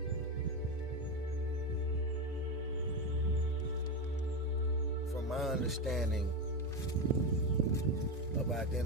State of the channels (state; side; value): normal; both; correlation 0.15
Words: From my understanding of